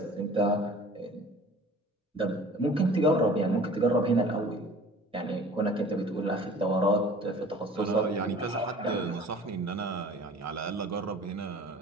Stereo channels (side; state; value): both; normal; correlation 0.45